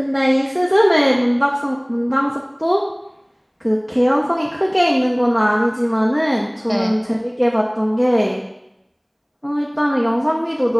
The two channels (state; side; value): identical; both; correlation 1.00